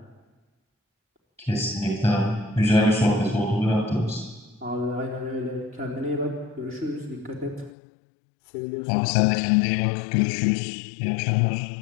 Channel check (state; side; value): drops out; right; at 7.7 s